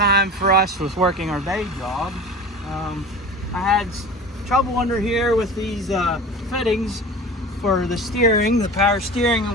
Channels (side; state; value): both; normal; correlation 0.35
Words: for us with working our day jobs. I had trouble under here with these fittings for the steering, the power steering